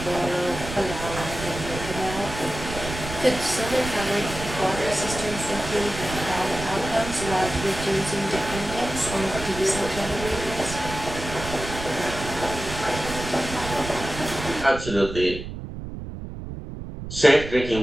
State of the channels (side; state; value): right; noise; rumble, 9 dB below the sound